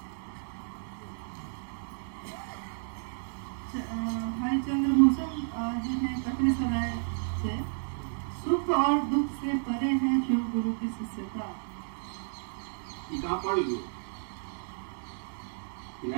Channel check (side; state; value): left; silent; digital silence